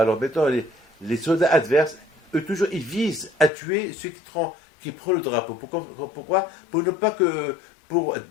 maintenant, les soldats adverses, eux, toujours, ils visent à tuer ceux qui prennent le drapeau. Pourquoi? Pour ne pas que...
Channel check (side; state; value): right; drops out; at 3.5 s